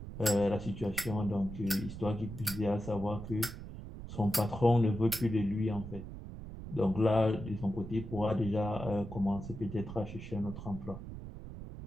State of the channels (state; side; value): noise; right; rumble, 11 dB below the sound